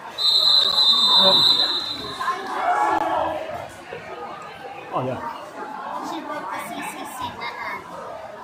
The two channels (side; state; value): both; identical; correlation 1.00